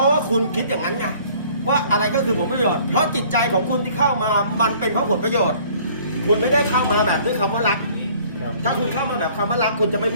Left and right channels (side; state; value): both; inverted; correlation -0.55